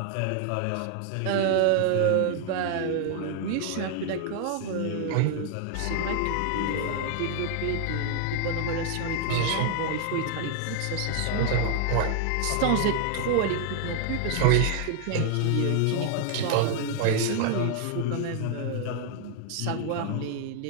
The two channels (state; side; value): different; both; correlation 0.00